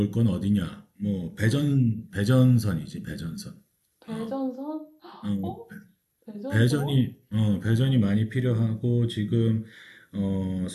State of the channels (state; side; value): identical; both; correlation 1.00